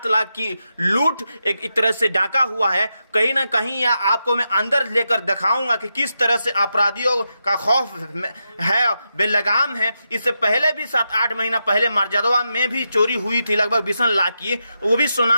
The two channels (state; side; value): inverted; both; correlation -0.87